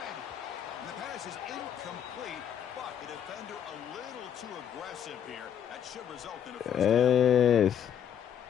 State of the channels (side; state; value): right; quieter; 9.0 dB